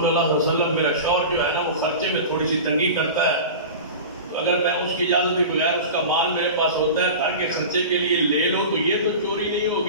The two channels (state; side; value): inverted; both; correlation -0.32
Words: اللہ صلی اللہ علیہ وسلم، میرا شوہر جو ہے نا وہ خرچے میں تھوڑی سی تنگی کرتا ہے، تو اگر میں اس کی اجازت کے بغیر اس کا مال میرے پاس ہوتا ہے گھر کے خرچے کے لیے لے لو تو یہ تو چوری نہیں